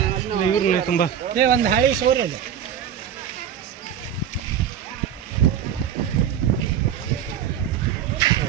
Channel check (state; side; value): quieter; left; 9.2 dB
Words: ಇವ್ರನ್ನ ತುಂಬಾ ಒಂದು ಹಾಳಿ ಸೋರಿ ಅದು